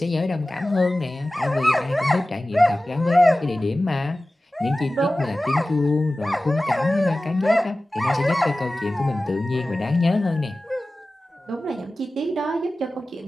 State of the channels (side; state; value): both; normal; correlation 0.96